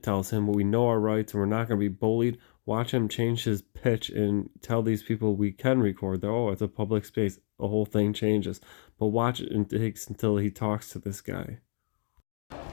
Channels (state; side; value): silent; right; digital silence